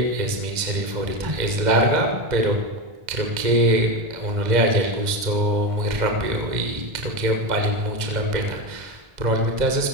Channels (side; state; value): left; late; 2.0 ms